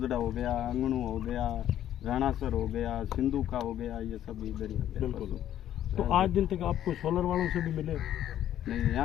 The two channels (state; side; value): quieter; right; 11.5 dB